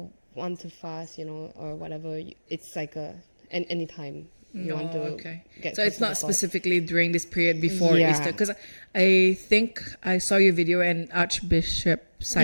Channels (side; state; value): both; inverted; correlation -1.00